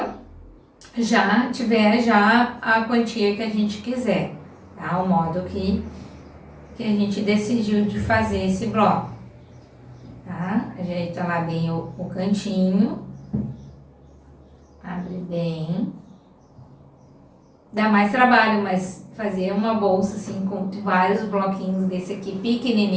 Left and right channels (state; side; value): identical; both; correlation 1.00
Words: já tiver já a quantia que a gente quiser, tá? O modo que a gente decidiu de fazer esse bloco, tá? Ajeita lá bem o cantinho, abre bem, dá mais trabalho, mas fazer uma bolsa assim com vários bloquinhos desse aqui